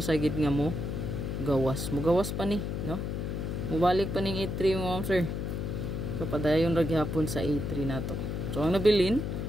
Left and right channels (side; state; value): left; noise; hum, 3 dB below the sound